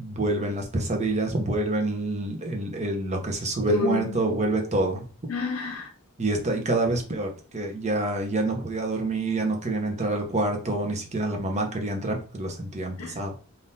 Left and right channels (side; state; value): both; normal; correlation 0.38